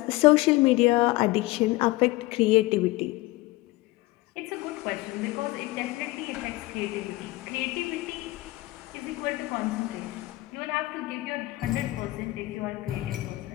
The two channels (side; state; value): right; quieter; 19.8 dB